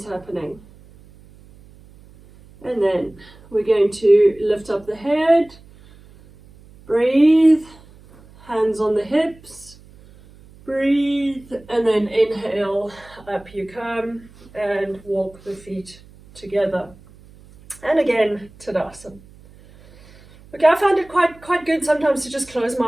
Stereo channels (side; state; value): right; noise; hum, 24 dB below the sound